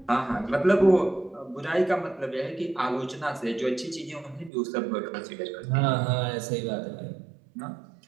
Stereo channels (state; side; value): drops out; left; at 4.5 s